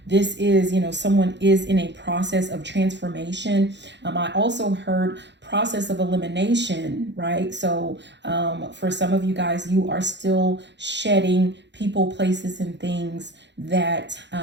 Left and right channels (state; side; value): late; left; 0.52 ms